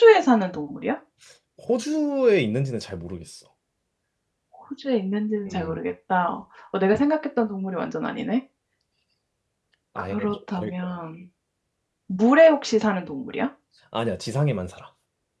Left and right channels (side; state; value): both; identical; correlation 1.00